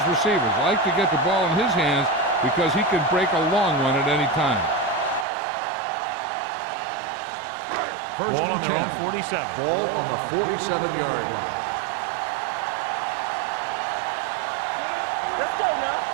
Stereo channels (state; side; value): drops out; left; at 5.2 s